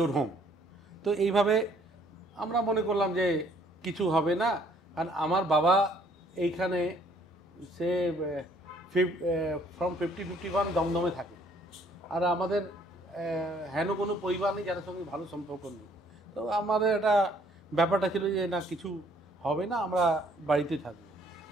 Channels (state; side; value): normal; both; correlation 0.62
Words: home. তো এইভাবে আমরা মনে করলাম যে কিছু হবে না, কারণ আমার বাবা এইখানে সে ফ্রম 50-51 দমদমে থাকে, আর আমাদের হেন কোনো পরিবার নেই যাদের সঙ্গে ভালো সম্পর্ক নেই। তো আমাদের একটা ব্যাপারটা ছিল যে না কিছু হবে না, আমরা বাড়িতে থাকবো।